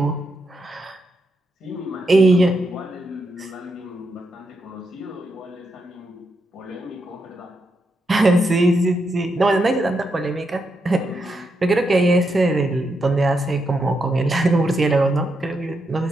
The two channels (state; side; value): normal; both; correlation 0.82